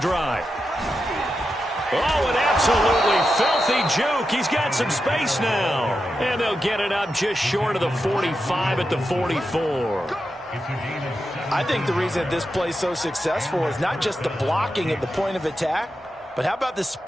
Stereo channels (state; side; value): normal; both; correlation 0.88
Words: Oh, an absolutely filthy juke. He's got some space now. And they'll get it up just short of the 45 at the 44. I think the reason this play is so successful is not just the blocking at the point of attack, but how about the